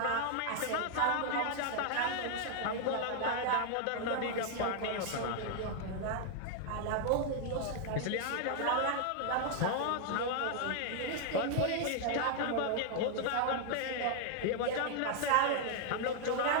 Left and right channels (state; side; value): different; both; correlation 0.00